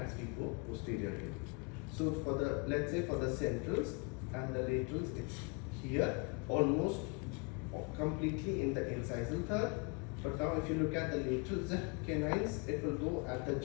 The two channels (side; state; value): right; quieter; 31.9 dB